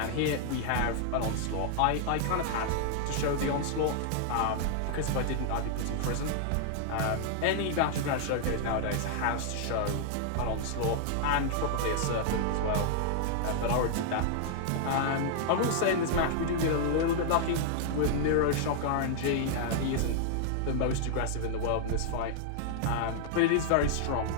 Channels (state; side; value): different; both; correlation -0.01